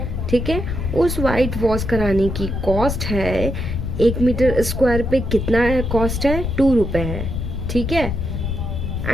ठीक है, उस वाइट वॉश कराने की कॉस्ट है 1 मीटर स्क्वायर पे कितना है कॉस्ट है 2 रुपए है, ठीक है।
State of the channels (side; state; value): left; noise; rumble, 3 dB below the sound